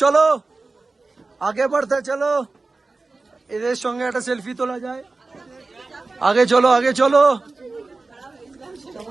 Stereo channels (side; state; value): left; quieter; 3.6 dB